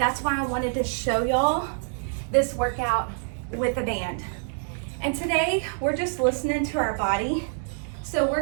why I wanted to show y'all this workout with a band. And today we're just listening to our body. So we're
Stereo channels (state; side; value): silent; left; 61 dB below the other